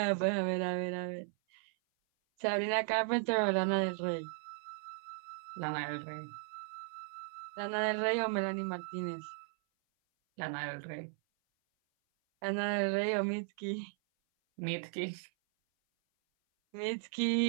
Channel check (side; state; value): left; silent; 54 dB below the other